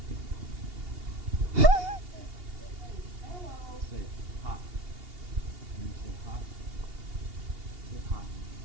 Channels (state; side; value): late; left; 2.8 ms